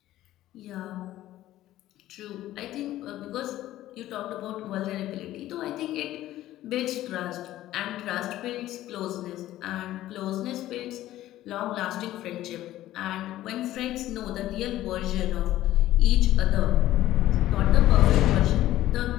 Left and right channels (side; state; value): right; quieter; 14.4 dB